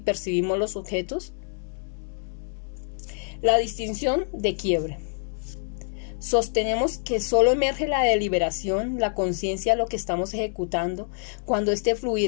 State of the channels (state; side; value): silent; right; 61 dB below the other